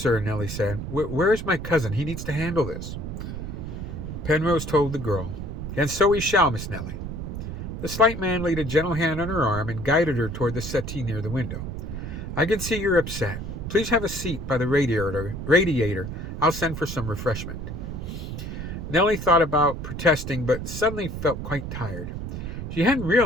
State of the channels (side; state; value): right; noise; rumble, 6 dB below the sound